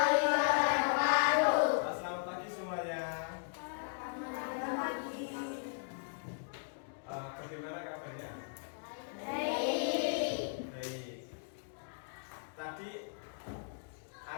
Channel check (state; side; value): silent; right; digital silence